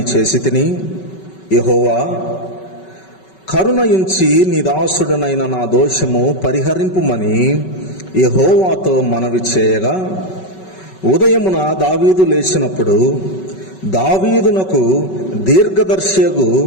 చేసి తిని. యెహోవా, కరుణయుంచి నీ దాసుడనైన నా దోషము పరిహరింపుమని యెహోవాతో మనవి చేయగా, ఉదయమున దావీదు లేచినప్పుడు దావీదునకు దీర్ఘదర్శియగు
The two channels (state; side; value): late; right; 5.3 ms